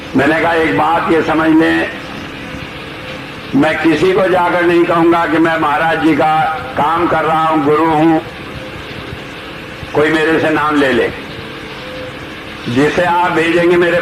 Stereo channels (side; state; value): both; identical; correlation 1.00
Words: मैंने कहा एक बात ये समझ लें, मैं किसी को जाकर नहीं कहूंगा कि मैं महाराज जी का काम कर रहा हूं, गुरु हूं। कोई मेरे से नाम ले ले, जिसे आप भेजेंगे मेरे